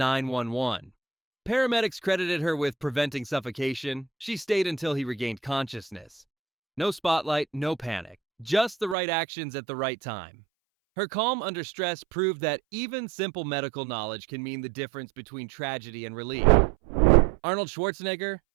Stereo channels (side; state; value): left; drops out; at 9.0 s